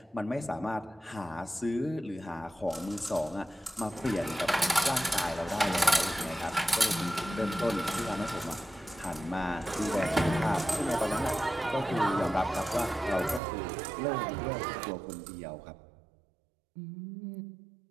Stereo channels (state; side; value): drops out; left; at 13.4 s